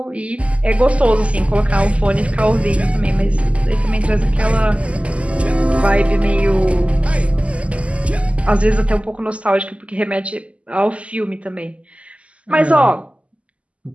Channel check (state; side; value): late; left; 0.061 ms